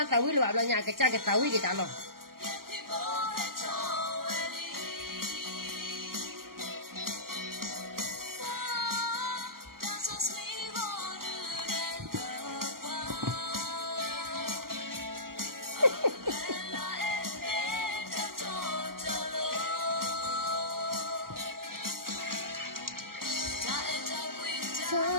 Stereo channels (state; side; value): late; left; 0.92 ms